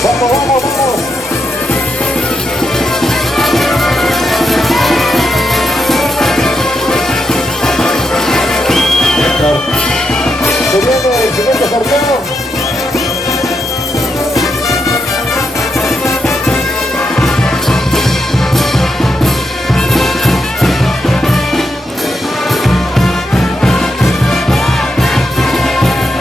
Vamos, vamos, vamos. Se viene el siguiente sorteo.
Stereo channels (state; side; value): normal; both; correlation 0.83